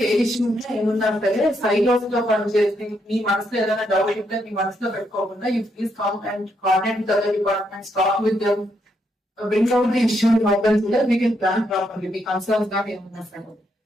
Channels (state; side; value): normal; both; correlation 0.78